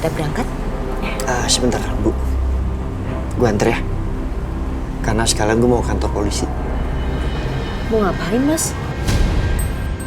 berangkat. Sebentar, Bu. Gue anter ya. Karena sekalian gue mau ke kantor polisi. Mau ngapain, Mas?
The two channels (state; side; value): identical; both; correlation 1.00